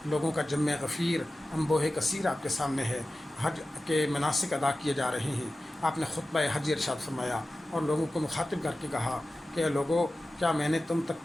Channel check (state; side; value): normal; both; correlation 0.95